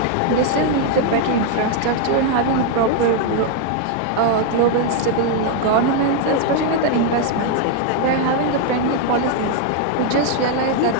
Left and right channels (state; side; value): different; both; correlation 0.01